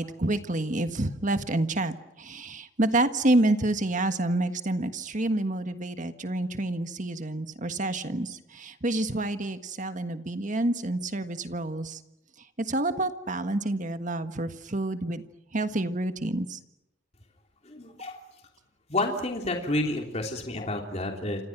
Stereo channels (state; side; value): normal; both; correlation 0.57